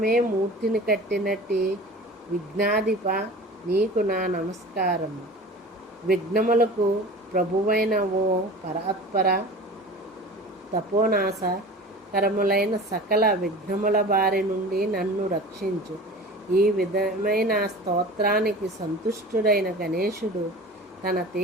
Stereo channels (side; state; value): both; normal; correlation 0.38